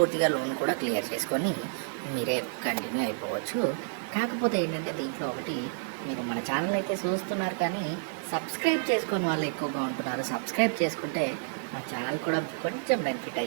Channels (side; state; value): left; silent; 58 dB below the other